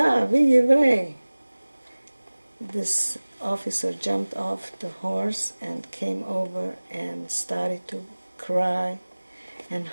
еврей." This officer jumped off the horse and came over and started to cry and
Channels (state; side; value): inverted; both; correlation -1.00